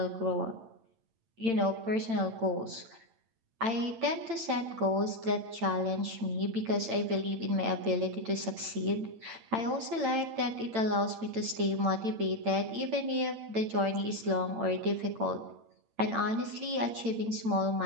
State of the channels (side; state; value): left; late; 8.9 ms